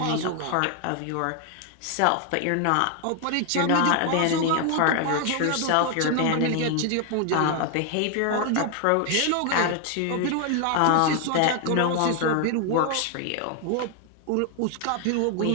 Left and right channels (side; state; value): both; different; correlation 0.00